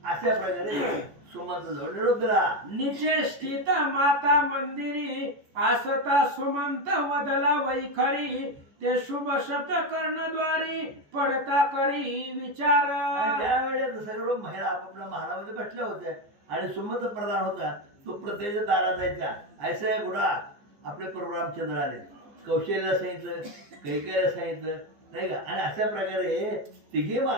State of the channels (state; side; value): late; left; 14 ms